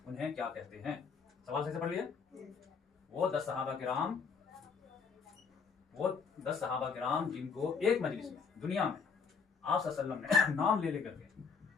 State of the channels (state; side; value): quieter; right; 5.6 dB